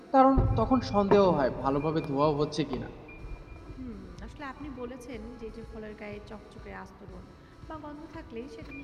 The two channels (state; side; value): identical; both; correlation 1.00